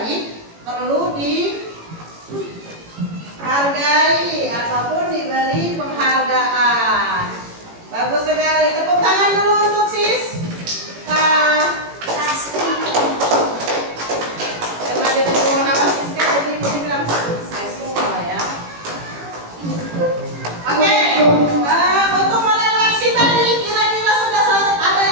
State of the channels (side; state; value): left; late; 18 ms